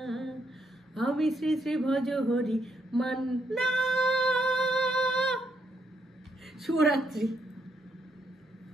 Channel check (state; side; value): normal; both; correlation 0.76